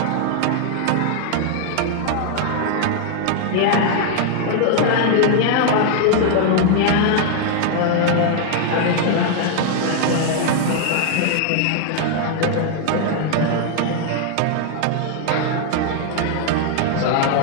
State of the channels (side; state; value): both; different; correlation 0.00